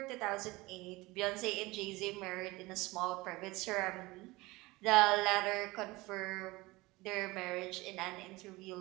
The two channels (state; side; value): quieter; left; 21.5 dB